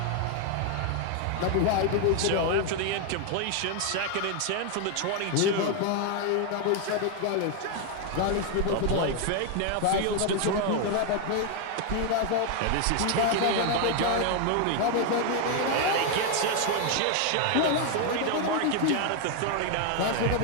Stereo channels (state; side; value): different; both; correlation 0.01